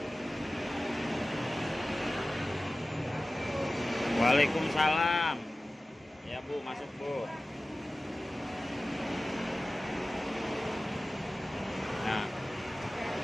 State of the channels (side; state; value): both; normal; correlation 0.96